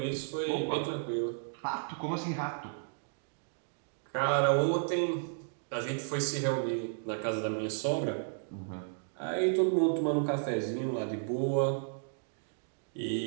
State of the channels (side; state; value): left; silent; digital silence